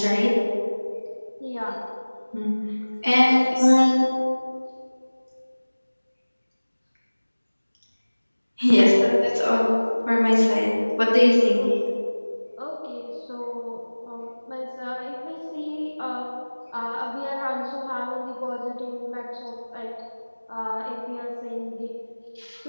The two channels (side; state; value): both; inverted; correlation -1.00